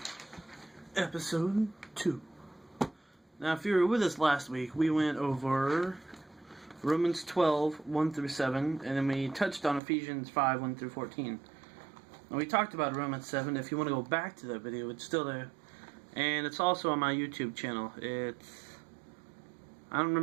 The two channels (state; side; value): drops out; left; at 9.8 s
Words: Episode 2. Now, if you were with us last week, we went over Romans 12, 1 through 7, and then we touched on Ephesians 5, 1 through 14. And we talked about Romans 7. If you want to go back to that video, it's still there. And it's also on my YouTube channel. I don't